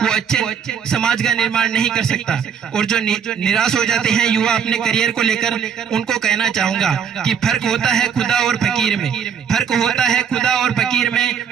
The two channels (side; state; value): left; quieter; 7.4 dB